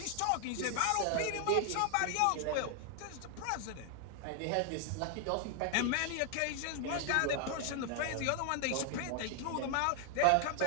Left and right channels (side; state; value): both; different; correlation 0.00